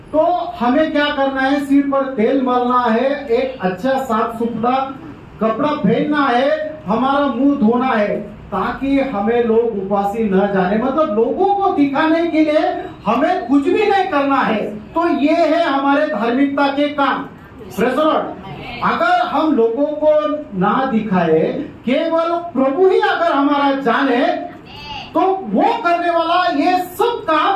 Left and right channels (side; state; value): both; identical; correlation 1.00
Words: तो हमें क्या करना है? सिर पर तेल मलना है, एक अच्छा साफ सुथरा कपड़ा पहनना है, हमारा मुंह धोना है, ताकि हमें लोग उपासी न जाने, मतलब लोगों को दिखाने के लिए हमें कुछ भी नहीं करना है। तो ये है हमारे धार्मिकता के काम। Praise the Lord. अगर हम लोगों को ना दिखाए, केवल प्रभु ही अगर हमारा जाने, तो वो करने वाला ये सब